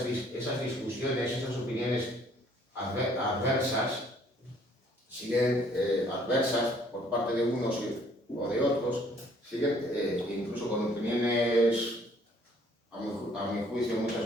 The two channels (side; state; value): both; normal; correlation 0.61